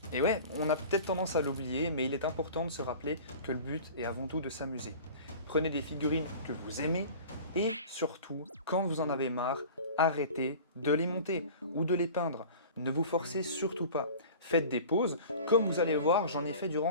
Et ouais, on a peut-être tendance à l'oublier, mais il est important de se rappeler que le but est avant tout de s'amuser. Prenez des figurines que vous aimez, et surtout, quand vous en avez marre, arrêtez de les monter ou de les peindre. Ne vous forcez surtout pas. Faites des pauses, comme vous allez voir, j'en ai fait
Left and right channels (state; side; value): inverted; both; correlation -0.40